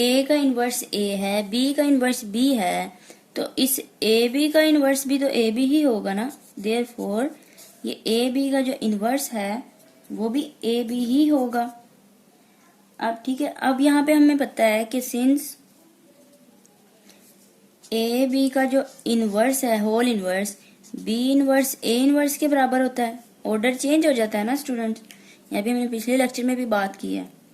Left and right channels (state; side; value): identical; both; correlation 1.00